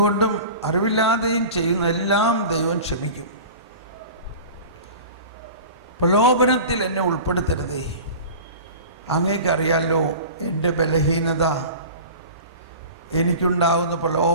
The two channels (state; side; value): inverted; both; correlation -0.37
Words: അറിവില്ലാതെയും ചെയ്യുന്നതെല്ലാം ദൈവം ക്ഷമിക്കും. പ്രലോഭനത്തിൽ എന്നെ ഉൾപ്പെടുത്തരുതേ. അങ്ങേക്കറിയാലോ എൻ്റെ ബലഹീനത. എനിക്കുണ്ടാകുന്ന